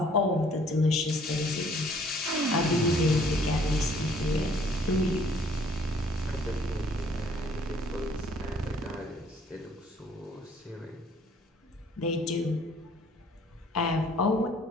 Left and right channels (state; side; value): normal; both; correlation 0.60